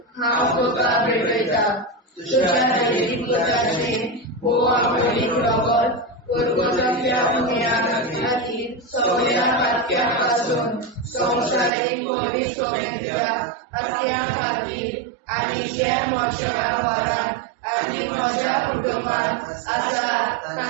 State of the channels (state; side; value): drops out; left; at 11.7 s